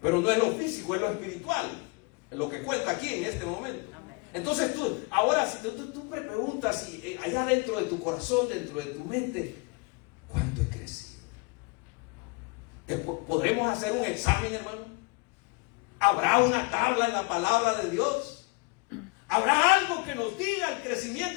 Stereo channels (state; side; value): quieter; right; 29.3 dB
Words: Pero no es lo físico, es lo espiritual. Es lo que cuenta aquí en este momento. Entonces ahora si tú me preguntas allá dentro de tu corazón, dentro de tu mente, ¿cuánto he crecido? ¿Podremos hacer un examen, hermano? ¿Habrá una tabla en la palabra de Dios? ¿Habrá algo que nos diga el